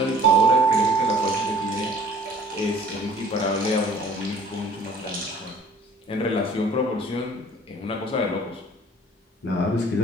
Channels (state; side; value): normal; both; correlation 0.52